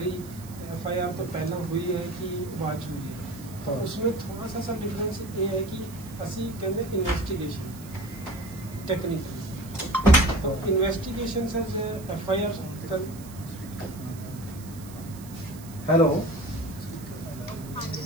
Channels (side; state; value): right; noise; hiss, 18 dB below the sound